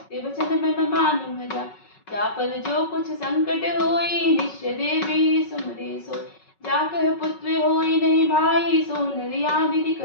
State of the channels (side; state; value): right; late; 5.4 ms